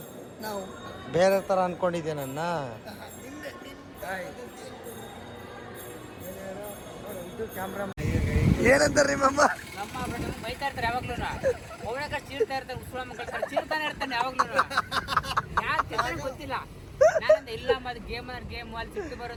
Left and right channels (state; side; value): identical; both; correlation 1.00